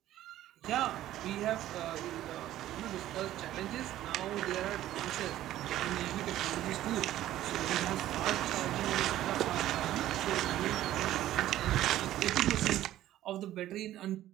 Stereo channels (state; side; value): quieter; left; 13.6 dB